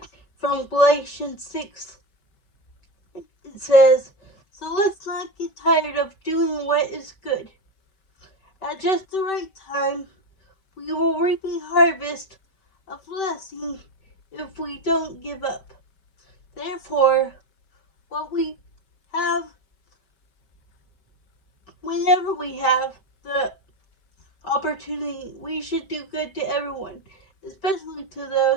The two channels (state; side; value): late; right; 5.2 ms